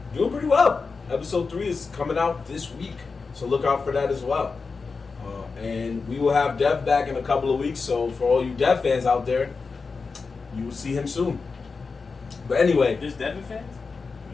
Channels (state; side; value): quieter; right; 4.6 dB